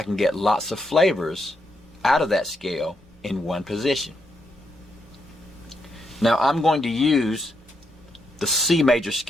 can get lots of flavors out of that scale in one position. Now I'm going to use the C major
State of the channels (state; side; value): normal; both; correlation 0.80